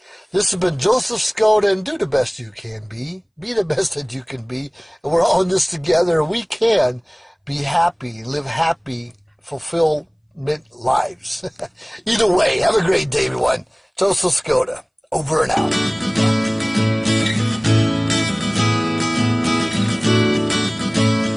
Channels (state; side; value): identical; both; correlation 1.00